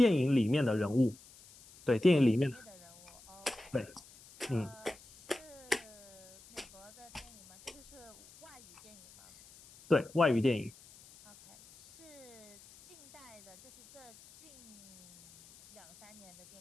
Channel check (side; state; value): left; noise; hiss, 22 dB below the sound